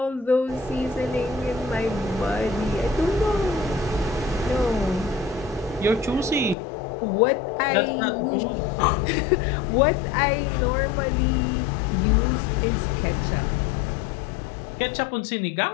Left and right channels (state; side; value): drops out; right; at 6.6 s